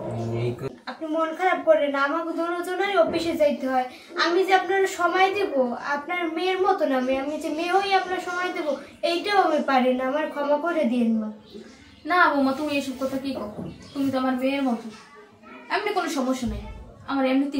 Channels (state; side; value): identical; both; correlation 1.00